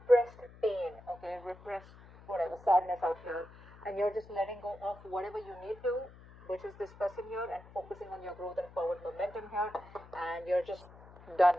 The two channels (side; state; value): left; noise; hum, 20 dB below the sound